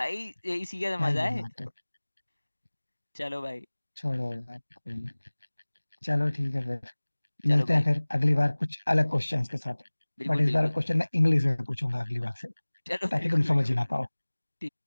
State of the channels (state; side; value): inverted; both; correlation -1.00